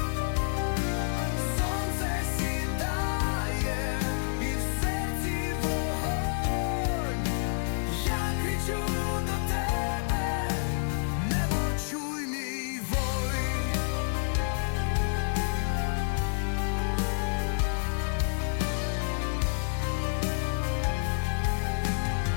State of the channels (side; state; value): right; silent; 59 dB below the other